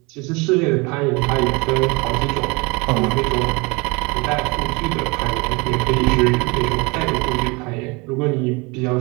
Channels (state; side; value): quieter; left; 27.1 dB